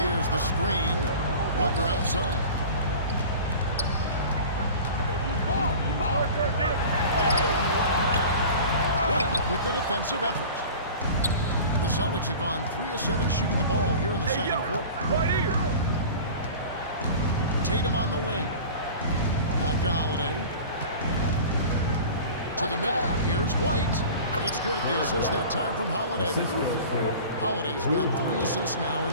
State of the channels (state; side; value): inverted; both; correlation -0.38